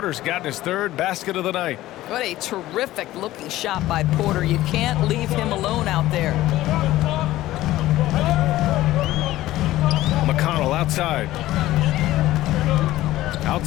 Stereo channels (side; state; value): right; quieter; 15.7 dB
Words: gotten his 3rd basket of the night. What a terrific looking shot by Porter. You can't leave him alone out there. McConnell outside.